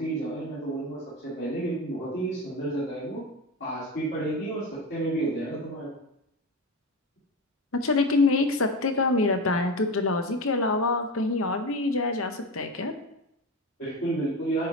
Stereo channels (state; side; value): normal; both; correlation 0.23